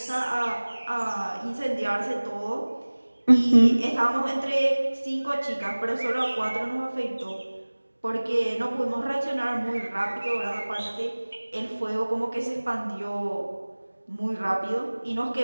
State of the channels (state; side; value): inverted; both; correlation -1.00